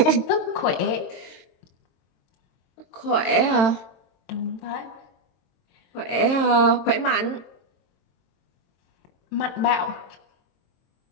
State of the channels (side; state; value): right; late; 22 ms